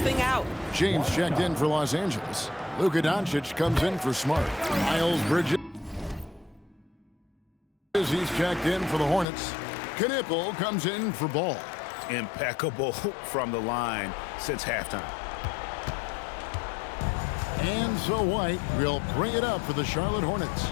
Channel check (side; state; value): right; drops out; at 9.2 s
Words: out. James checked in for Los Angeles. Luka Doncic comes in for Smart. Miles Bridges. He's checked in for the Hornets. Knipple comes in for Ball. Impeccable from the line since halftime. And so White will bring it up for the Charlotte Hornets.